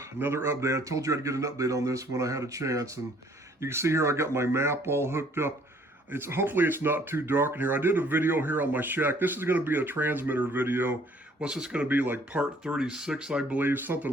another update. I told you I'd get an update on this when I had a chance, and you can see here I got my map all hooked up. Hopefully it's not too dark in here. I did a video here on my shack. This is going to be a transmitter video. What's this going to be, like part 36, I believe, something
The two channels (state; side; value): normal; both; correlation 0.59